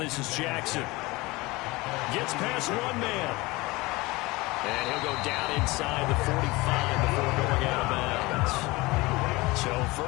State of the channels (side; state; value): right; quieter; 22.2 dB